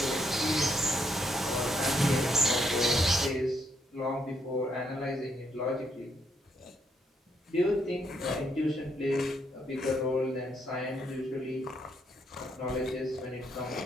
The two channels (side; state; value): both; normal; correlation 0.74